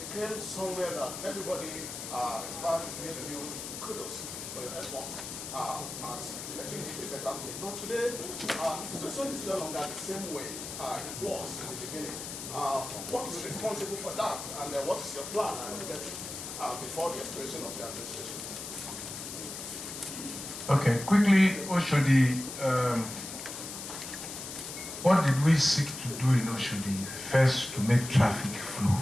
somewhere that everybody, in fact, gave you kudos for your efforts at making it a better place. But today, the situation is no longer the same way it was in the beginning. What is responsible for that, and what is your plan before the expiration of your administration? Okay, quickly, Oshodi, what did we seek to do in Oshodi? First, to make traffic flow.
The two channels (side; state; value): left; noise; hiss, 8 dB below the sound